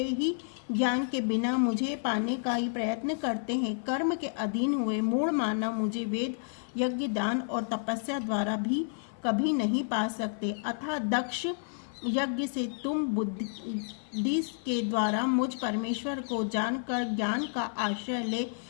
ही ज्ञान के बिना मुझे पाने का ही प्रयत्न करते हैं। कर्म के अधीन हुए मूढ़ मानव मुझे वेद, यज्ञ, दान और तपस्या द्वारा भी कभी नहीं पा सकते। अतः दक्ष, यज्ञ से तुम बुद्धि के द्वारा मुझ परमेश्वर को जानकर ज्ञान का आश्रय ले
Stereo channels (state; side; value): silent; right; digital silence